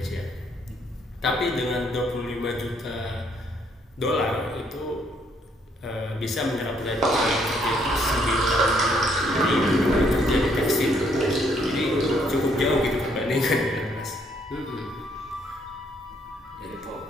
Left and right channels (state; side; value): normal; both; correlation 0.69